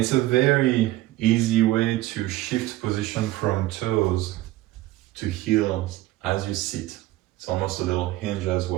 a very easy way to shift position from toes to heels as you sit. It's almost a little hinge as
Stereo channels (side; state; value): left; quieter; 16.5 dB